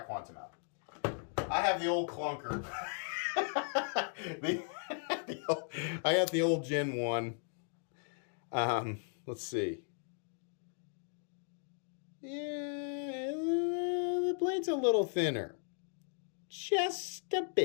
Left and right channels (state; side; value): silent; right; 53 dB below the other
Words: Quantum out. I have the old clunker. I got the old Gen 1. Let's see. Yeah, the blade's a little thinner. Just a